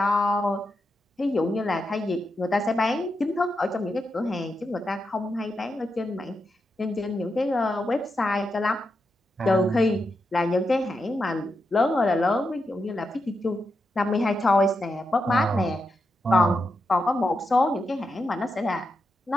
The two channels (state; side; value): normal; both; correlation 0.86